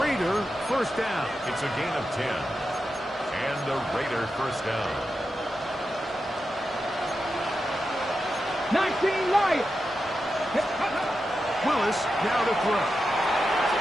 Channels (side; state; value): both; normal; correlation 0.89